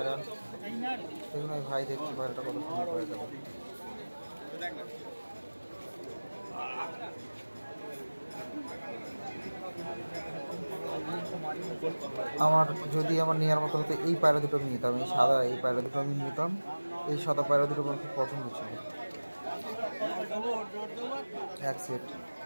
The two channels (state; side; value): inverted; both; correlation -1.00